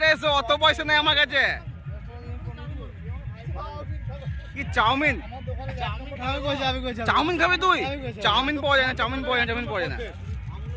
এসে অত পয়সা নেই আমার কাছে। কি চাউমিন খাবি তুই? চাউমিন পাওয়া যায় না।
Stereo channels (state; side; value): identical; both; correlation 1.00